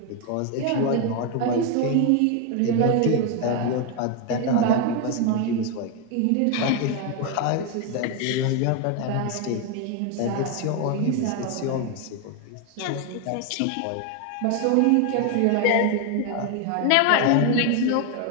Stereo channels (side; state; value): both; different; correlation 0.01